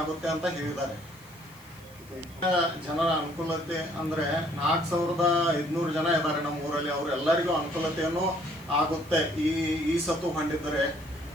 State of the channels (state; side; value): noise; right; hiss, 24 dB below the sound